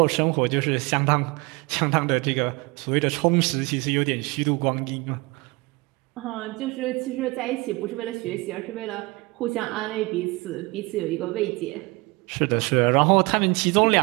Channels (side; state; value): left; quieter; 24.7 dB